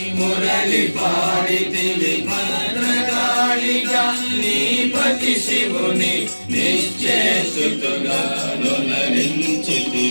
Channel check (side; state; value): both; inverted; correlation -1.00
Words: మురళి పాడితివి, భద్రకాళిగా నీపతి శివుని నిశ్చేసుతుగా